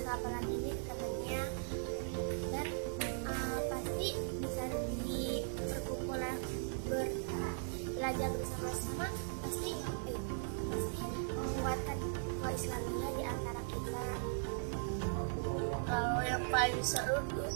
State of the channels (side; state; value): left; silent; 52 dB below the other